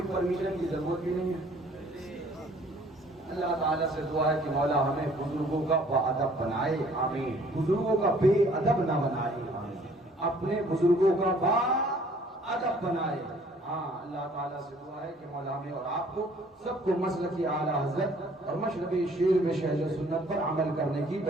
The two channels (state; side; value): normal; both; correlation 0.57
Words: پرمیشن کی ضرورت بھی نہیں ہے۔ اللہ تعالیٰ سے دعا ہے کہ مولا ہمیں بزرگوں کا باادب بنائے، آمین، بزرگوں کا بے ادب نہ بنائے، اپنے بزرگوں کا باادب بنائے۔ ہاں اللہ تعالیٰ سے دعا ہے کہ مولا ہمیں اور آپ کو سب کو مسلک اعلیٰ حضرت اور مشرب شیر میں شہد و سنت پر عمل کرنے کی